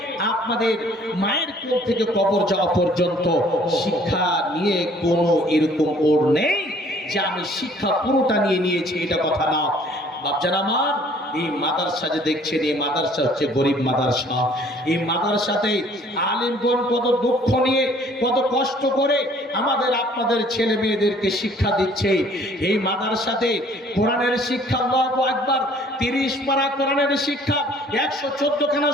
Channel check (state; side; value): normal; both; correlation 0.56